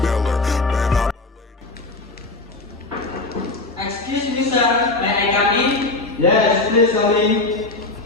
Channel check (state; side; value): quieter; right; 3.2 dB